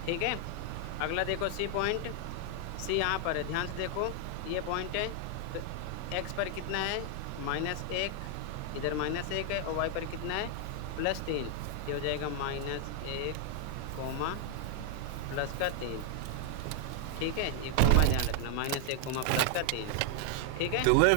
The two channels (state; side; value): different; both; correlation 0.00